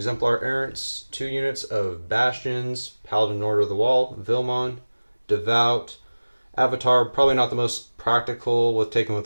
Errants, 2 units of Bastions, Paladin Order of the Wall, Vilmon, Devout, Avatar, probably not the most practical with taking with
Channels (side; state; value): both; inverted; correlation -1.00